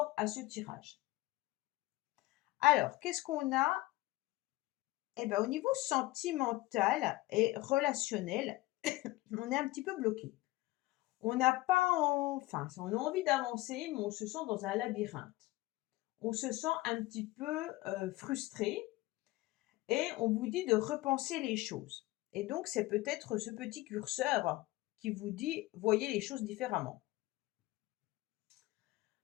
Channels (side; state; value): right; quieter; 19.2 dB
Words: à ce tirage. Alors, qu'est-ce qu'on a? Eh bien, au niveau sentimental et relationnel, on est un petit peu bloqué. On n'a pas, enfin, on a envie d'avancer, mais on se sent dans un labyrinthe. On se sent un petit peu frustré et on vous dit de repenser les choses. Et donc, c'est peut-être ce petit curseur qui vous dit, voyez les choses différemment.